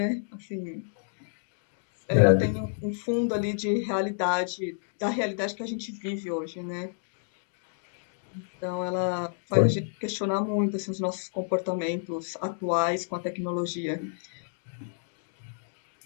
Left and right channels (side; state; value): right; silent; digital silence